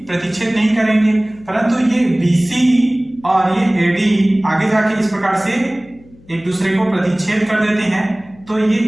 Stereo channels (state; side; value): noise; left; hum, 26 dB below the sound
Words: प्रतिच्छेद नहीं करेंगे, परंतु ये BC और ये AD आगे जाके इस प्रकार से एक दूसरे को प्रतिच्छेद कर देते हैं। तो ये